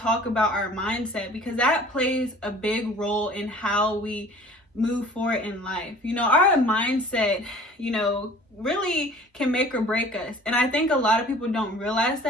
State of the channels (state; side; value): normal; both; correlation 0.48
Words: about our mindset because that plays a big role in how we move forward in life. Our mindset, really can make or break us. And I think a lot of people don't realize